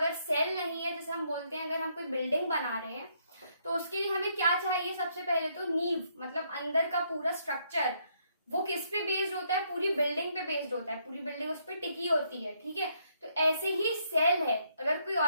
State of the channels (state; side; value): inverted; both; correlation -0.72